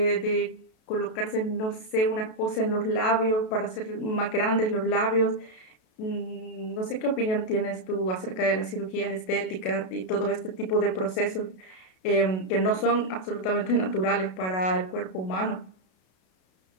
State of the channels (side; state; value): right; late; 32 ms